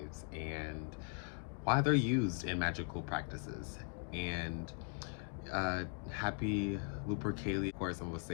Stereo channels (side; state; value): right; silent; 51 dB below the other